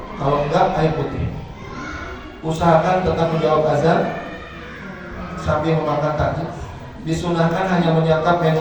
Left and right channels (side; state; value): both; identical; correlation 1.00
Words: Kalau enggak, air putih. Usahakan tetap menjawab azan sambil memakan takjil. Disunahkan hanya menyantap